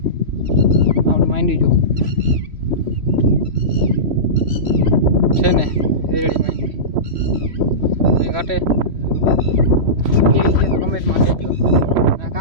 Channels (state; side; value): late; left; 3.1 ms